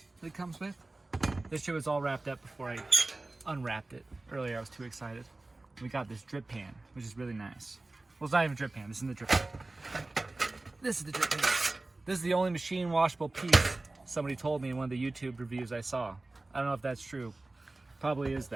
that it comes with. This shit was all wrapped up before I unwrapped it. Earlier I was too excited. We got this drip pan, which is really nice. Well, it's not even a drip pan, this isn't the drip pan. This is the drip pan. This is the only machine washable piece somebody told me in one of the YouTube reviews I saw. I don't know if that's true. Probably is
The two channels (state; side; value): quieter; left; 3.0 dB